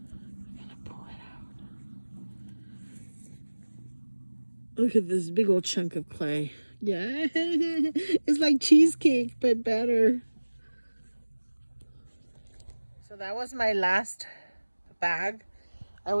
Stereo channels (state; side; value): inverted; both; correlation -1.00